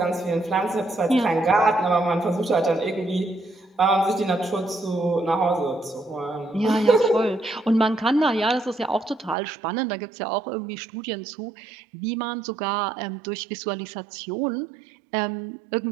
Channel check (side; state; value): left; drops out; at 9.3 s